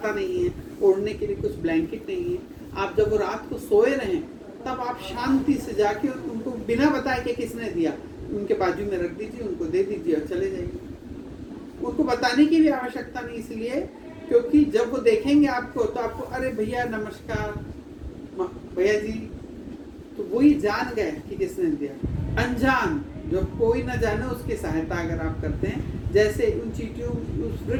नहीं है, ओढ़ने के लिए कुछ ब्लैंकेट नहीं है, आप जब वो रात को सोए रहें, तब आप शांति से जाके उनको बिना बताए कि किसने दिया, उनके बाजू में रख दीजिए, उनको दे दीजिए और चले जाइए। उनको बताने की भी आवश्यकता नहीं, इसलिए क्योंकि जब वो देखेंगे आपको तो आपको, अरे भैया नमस्कार भैया जी, तो वही जान गए कि किसने दिया। अनजान, जो कोई ना जाने, उसकी सहायता अगर आप करते हैं, जैसे उन चींटियों, उस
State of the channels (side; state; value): both; identical; correlation 1.00